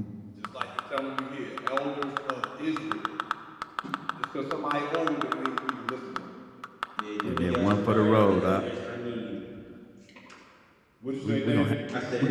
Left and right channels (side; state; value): both; identical; correlation 1.00